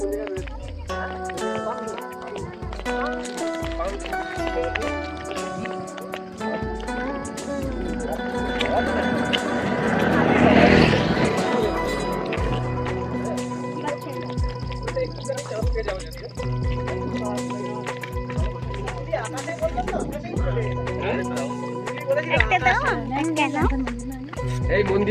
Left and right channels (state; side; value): identical; both; correlation 1.00